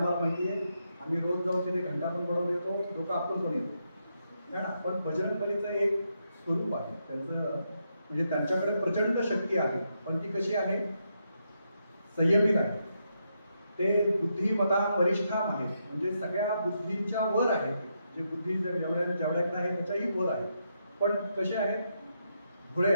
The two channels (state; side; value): inverted; both; correlation -0.81